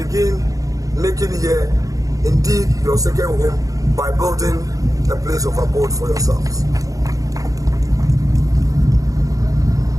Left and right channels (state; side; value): late; left; 0.17 ms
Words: making here indeed your second home by building a place of abode for yourselves.